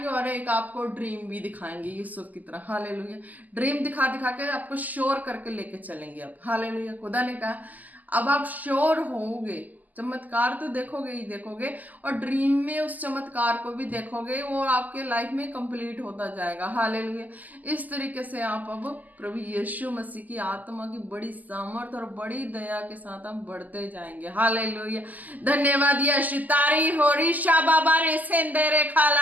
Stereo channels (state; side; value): late; left; 0.081 ms